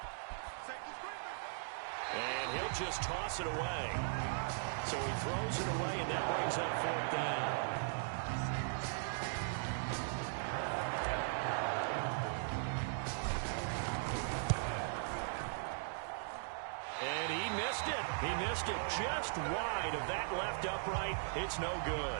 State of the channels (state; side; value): silent; left; digital silence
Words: And he'll just toss it away. So he throws it away, and that brings up 4th down. And he missed it. He missed it just wide of that left upright. It's no good.